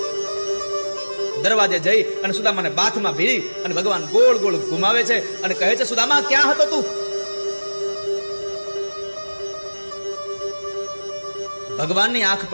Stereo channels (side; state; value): both; inverted; correlation -1.00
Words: દરવાજે જઈ અને સુદામાને બાથમાં ભીડી અને ભગવાન ગોળ ગોળ ઘુમાવે છે અને કહે છે, સુદામા ક્યાં હતો તું? ભગવાનની આંખ